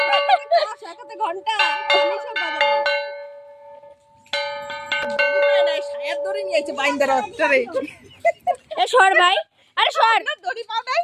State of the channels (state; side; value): identical; both; correlation 1.00